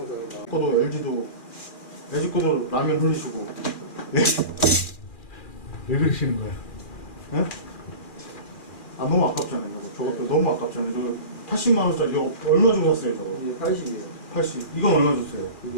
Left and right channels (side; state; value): right; late; 2.4 ms